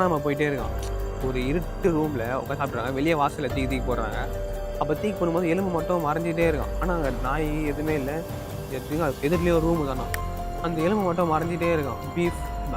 போயிட்டே இருக்கான். ஒரு இருட்டு ரூமில் உட்காந்து சாப்பிட்றாங்க. வெளியே வாசலில் தூக்கி போடுறாங்க. அப்போ தூக்கி போடும்போது எலும்பு மட்டும் மறைஞ்சிட்டே இருக்கான். ஆனால் அங்கே நாய் எதுவுமே இல்லை. எதிர்லேயே ஒரு ரூமு தானே. அந்த எலும்பு மட்டும் மறைஞ்சிட்டே இருக்கான். பீஃப்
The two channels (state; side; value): identical; both; correlation 1.00